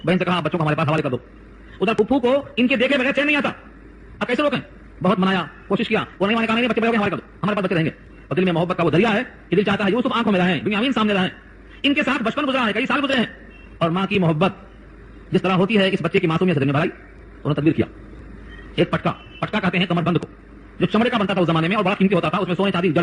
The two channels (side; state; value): both; identical; correlation 1.00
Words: بہن سے کہا بچوں کو ہمارے پاس حوالے کر دو. ادھر پھپھو کو ان کے دیکھے بغیر چین نہیں آتا. اب کیسے روکیں؟ بہت منایا، کوشش کیا، وہ نہیں کہا نہیں بچے بڑے ہو گئے حوالے کر دو، ہمارے پاس بچے رہیں گے. اور دل میں محبت کا وہ دریا ہے کہ دل چاہتا ہے یوسف آنکھوں میں رہیں، بنیامین سامنے رہیں. ان کے ساتھ بچپن گزرا ہے، کئی سال گزرے ہیں اور ماں کی محبت جس طرح ہوتی ہے اس بچے کی معصومیت سے بھرائی انہوں نے تدبیر کیا. ایک پٹکا کہتے ہیں کمر بند کو, جو چمڑے کا بنتا تھا اس زمانے میں اور بڑا قیمتی ہوتا تھا, اس میں سونے چاندی